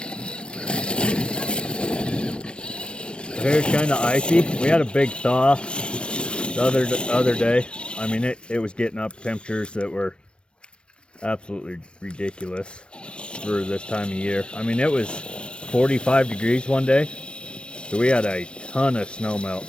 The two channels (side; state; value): right; late; 0.057 ms